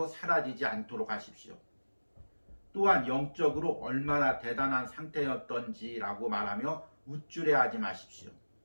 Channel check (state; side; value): inverted; both; correlation -1.00